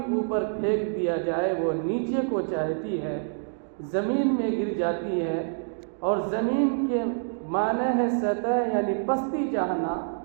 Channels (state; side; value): silent; left; digital silence